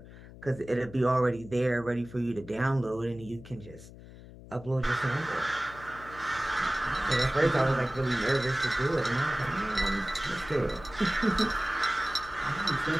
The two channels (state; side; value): noise; left; hum, 17 dB below the sound